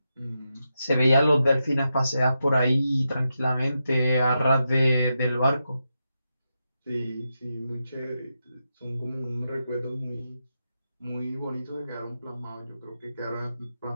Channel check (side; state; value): both; inverted; correlation -0.87